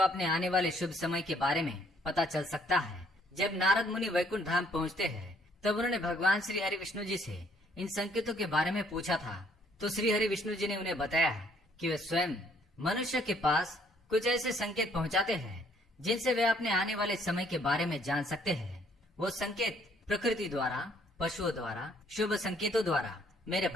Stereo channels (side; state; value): both; normal; correlation 0.65